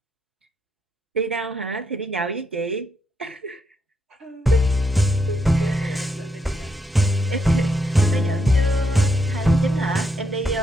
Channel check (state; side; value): normal; both; correlation 0.79